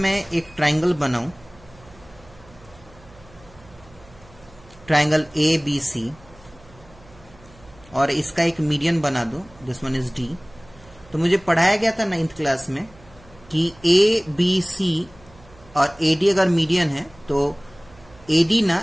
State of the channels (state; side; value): noise; right; hum, 25 dB below the sound